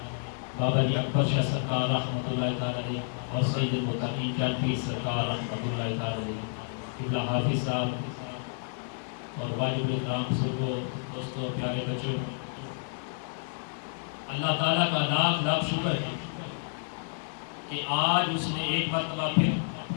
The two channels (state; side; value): silent; right; 58 dB below the other